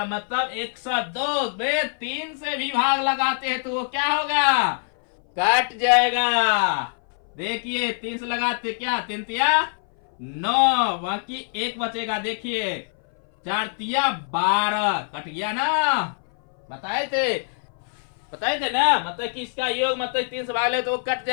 मतलब 102 में 3 से भी भाग लगाते हैं तो वो क्या होगा, कट जाएगा। देखिए 3 से लगाते क्या, 3 तिया 9, बाकी एक बचेगा। देखिए 4 तिया 12, कट गया ना, बताए थे ना, मतलब कि इसका योग मतलब 3 से भाग ले तो वो कट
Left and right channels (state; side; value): silent; right; 59 dB below the other